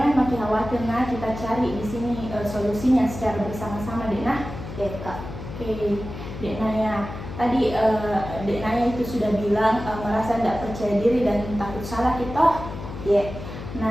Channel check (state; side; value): noise; left; hum, 10 dB below the sound